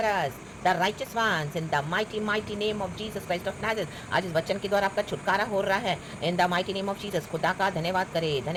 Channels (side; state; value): both; identical; correlation 1.00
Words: us, the righteous ones, in the mighty mighty name of Jesus Christ of Nazareth। आज इस वचन के द्वारा आपका छुटकारा हो रहा है in the mighty name of Jesus। खुदा का धन्यवाद करे,